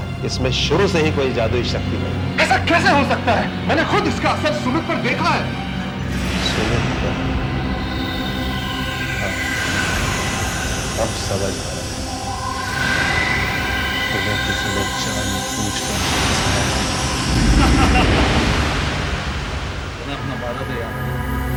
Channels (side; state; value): both; identical; correlation 1.00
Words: इसमें शुरू से ही कोई जादुई शक्ति नहीं। ऐसा कैसे हो सकता है? मैंने खुद इसका असर सुमित पर देखा है। सुमित पर? हाँ, अब समझ आया। तुम्हें किसी ने जानबूझकर फंसाया। अपना वादा दे यार।